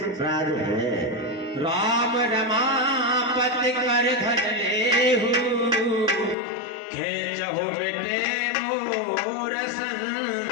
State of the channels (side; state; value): right; drops out; at 6.4 s